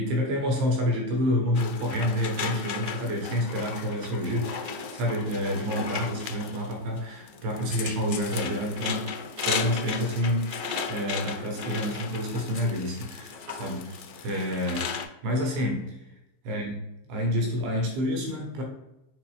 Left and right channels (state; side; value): late; left; 14 ms